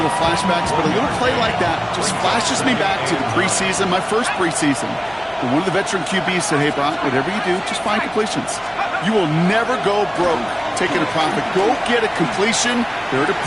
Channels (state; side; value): identical; both; correlation 1.00